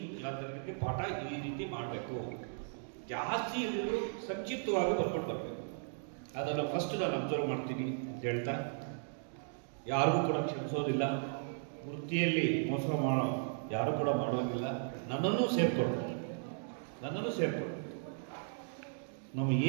ಕ್ಲಾಸ್ಗೆ ಪಾಠ ಈ ರೀತಿ ಮಾಡಬೇಕು, ಜಾಸ್ತಿ ಇಲ್ಲೂ ಸಂಕ್ಷಿಪ್ತವಾಗಿ ಬರ್ಕೊಂಡು ಬರಬೇಕು. ಅದನ್ನು ಫಸ್ಟ್ ನಾನು ಅಬ್ಸರ್ವ್ ಮಾಡ್ತೀನಿ ಅಂತ ಹೇಳ್ತಾ, ಯಾರಿಗೂ ಕೂಡ ಕ್ಷಮಿಸೋದಿಲ್ಲ, ವೃತ್ತಿಯಲ್ಲಿ ಮೋಸ ಯಾರು ಕೂಡ ಮಾಡೋದಿಲ್ಲ. ನನ್ನನ್ನು ಸೇರ್ಕೊಳ್ತಾರೆ. ನಾವು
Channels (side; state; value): left; silent; digital silence